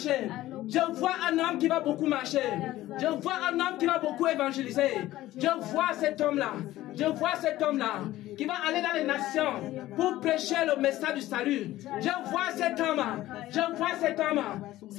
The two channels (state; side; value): quieter; right; 15.5 dB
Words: Je vois un homme qui va beaucoup marcher. Je vois un homme qui va beaucoup évangéliser. Je vois cet homme-là. Je vois cet homme-là qui va aller dans les nations pour prêcher le message du salut. Je vois cet homme. Je vois cet homme.